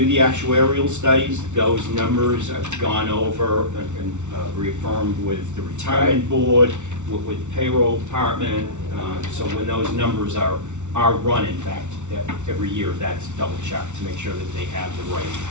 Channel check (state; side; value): late; left; 0.84 ms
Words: the actuarial studies, those numbers have gone over and reaffirmed with the retirement board, with the payroll department. So when those numbers are run, in fact, every year, that's double checked to make sure that they have the